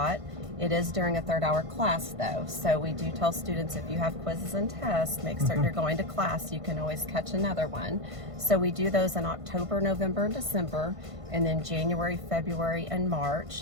It is during a third-hour class, though, so we do tell students, if you have quizzes and tests, make certain you're going to class. You can always catch another one. So we do those in October, November, and December, and then January, February, and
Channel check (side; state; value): left; late; 1.5 ms